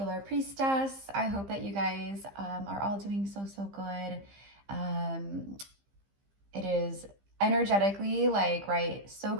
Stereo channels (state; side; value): late; left; 15 ms